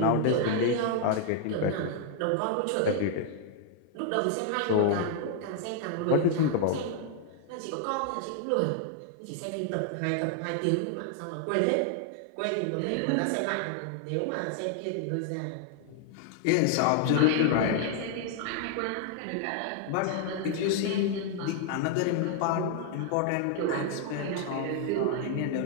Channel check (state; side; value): different; both; correlation 0.00